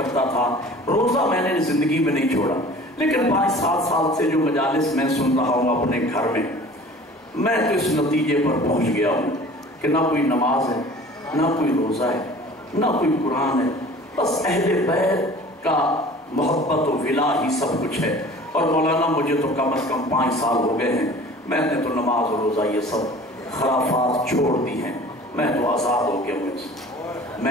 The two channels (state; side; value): normal; both; correlation 0.45